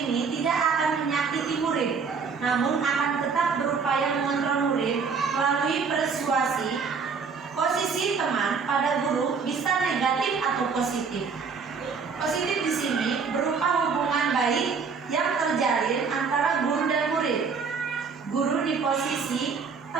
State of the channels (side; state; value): left; quieter; 5.4 dB